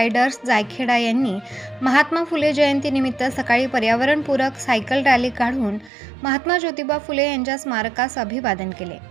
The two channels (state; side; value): drops out; left; at 5.9 s